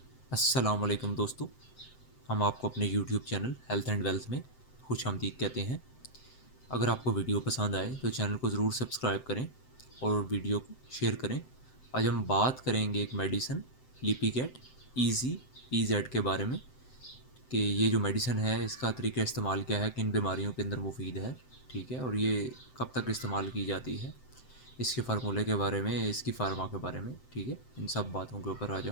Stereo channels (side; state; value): right; late; 7.8 ms